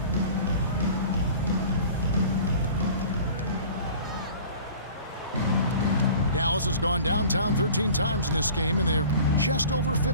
Dallas has gone downtown 13 times in this game, and they're just over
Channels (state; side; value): inverted; both; correlation -0.44